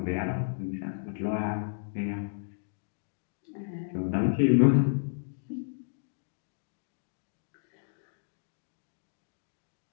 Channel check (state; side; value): silent; right; digital silence